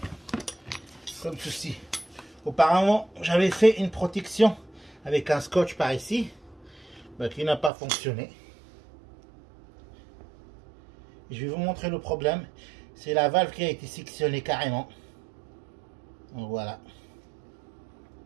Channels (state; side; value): drops out; left; at 7.7 s